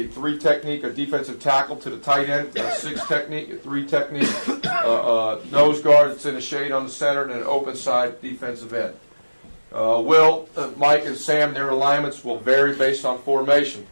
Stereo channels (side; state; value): both; inverted; correlation -1.00